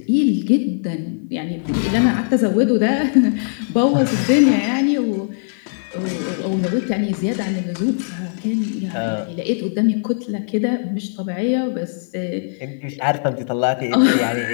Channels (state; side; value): silent; right; digital silence